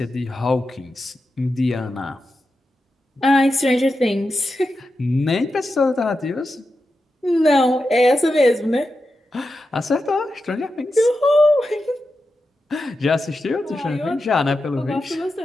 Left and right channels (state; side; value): normal; both; correlation 0.90